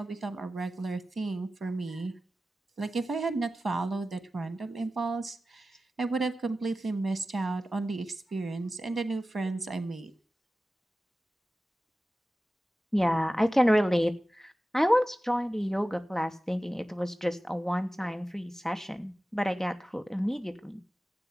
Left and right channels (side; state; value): both; normal; correlation 0.95